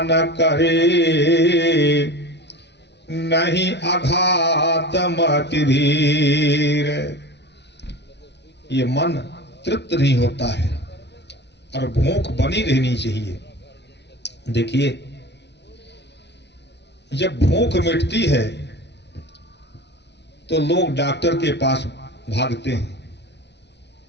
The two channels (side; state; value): right; late; 0.50 ms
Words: करे, नहीं अघात मति धीर। ये मन तृप्त नहीं होता है और भूख बनी रहनी चाहिए। देखिए जब भूख मिटती है तो लोग डॉक्टर के पास भागते हैं।